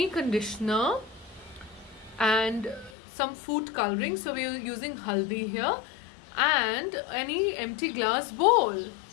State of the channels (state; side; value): drops out; right; at 3.0 s